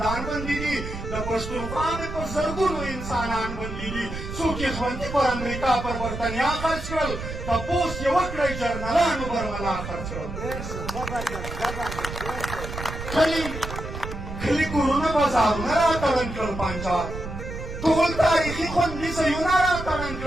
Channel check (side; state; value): right; noise; rumble, 8 dB below the sound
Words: بندي دي د پښتونخوا مې په زرګونو انسانان بندي دي څوک یې ژوندي پر امریکا پر برطنیا خرڅ کړل تپوس یې وکړئ جرنلانو برملا خرڅ کړل کلي کورونه بازارونه راتړن کړل پنجاب ټول تاریخي خوندي ځایونه راتړن